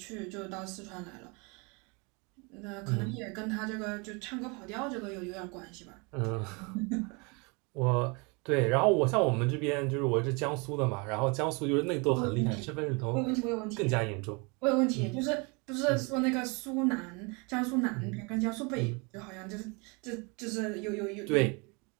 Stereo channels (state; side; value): quieter; left; 30.4 dB